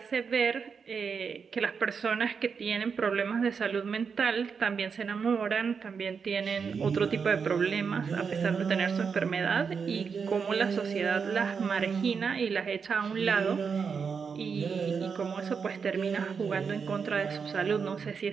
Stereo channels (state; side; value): quieter; left; 5.9 dB